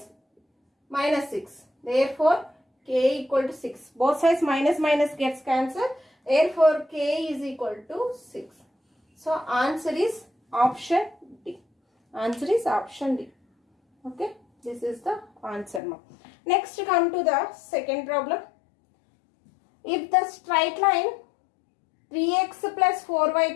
minus 6. Therefore, k equal to 6. Both sides minus minus gets cancelled. Therefore, k is equal to 6. So, answer is option D. Answer is option D. Okay. This is the answer now. Next, come to the second problem. If the straight line 3x plus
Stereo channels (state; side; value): drops out; right; at 15.8 s